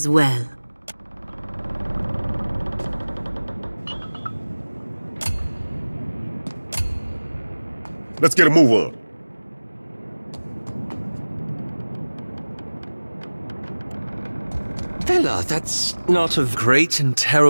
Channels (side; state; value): both; inverted; correlation -1.00